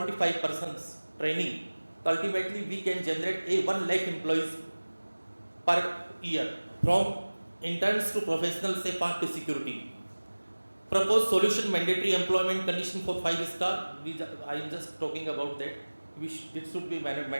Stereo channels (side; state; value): both; inverted; correlation -1.00